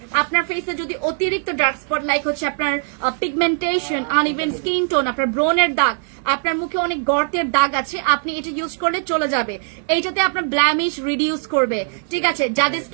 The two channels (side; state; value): left; silent; 55 dB below the other